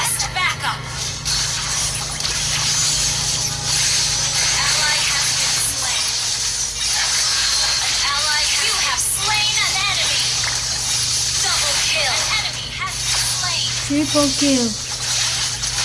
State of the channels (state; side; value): identical; both; correlation 1.00